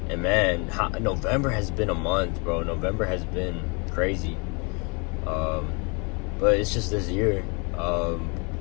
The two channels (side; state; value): right; quieter; 32.3 dB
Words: And man, November has been a month, bro. November has been crazy. But it's just this year.